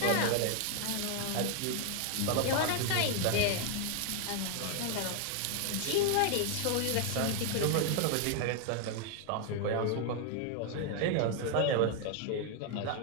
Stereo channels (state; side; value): different; both; correlation 0.00